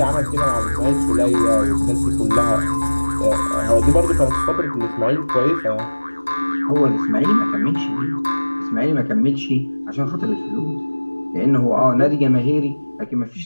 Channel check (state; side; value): inverted; both; correlation -1.00